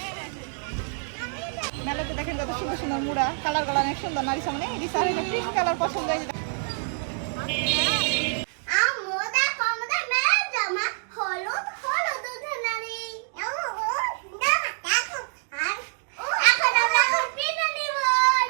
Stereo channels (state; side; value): silent; left; digital silence